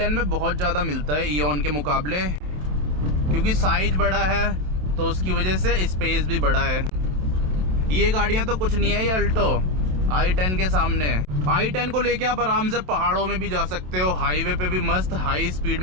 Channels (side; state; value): left; late; 27 ms